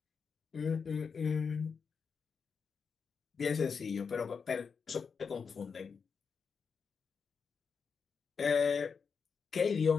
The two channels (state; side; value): quieter; right; 5.8 dB